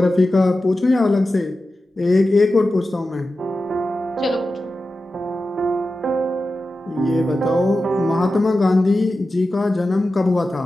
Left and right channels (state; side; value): normal; both; correlation 0.93